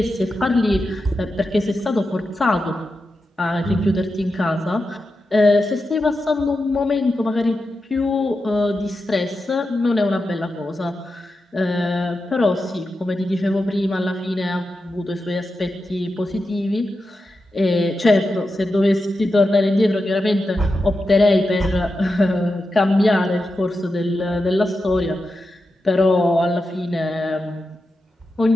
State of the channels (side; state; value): both; normal; correlation 0.89